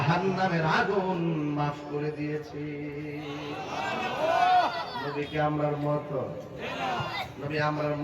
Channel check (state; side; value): identical; both; correlation 1.00